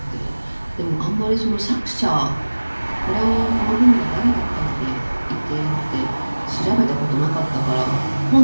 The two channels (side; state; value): both; inverted; correlation -1.00